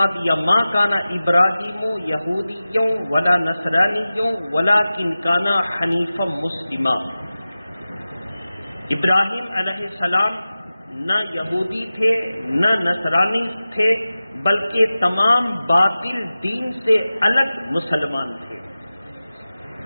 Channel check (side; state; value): both; inverted; correlation -0.96